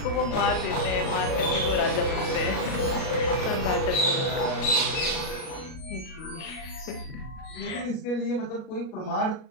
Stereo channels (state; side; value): late; right; 37 ms